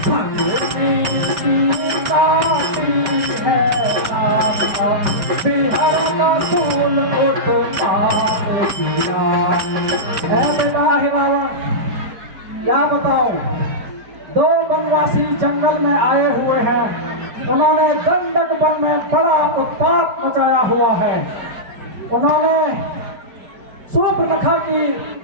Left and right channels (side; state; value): left; late; 5.1 ms